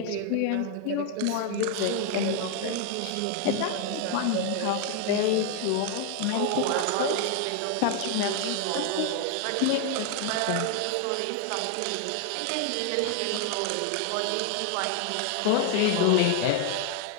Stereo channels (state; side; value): different; both; correlation 0.00